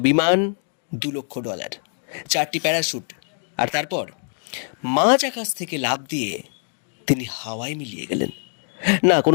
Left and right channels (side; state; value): right; silent; 63 dB below the other